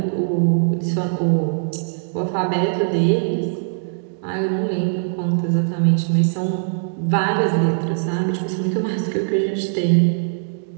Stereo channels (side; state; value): left; silent; digital silence